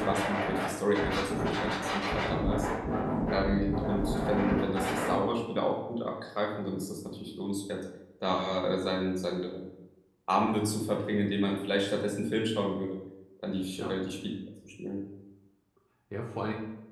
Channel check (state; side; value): identical; both; correlation 1.00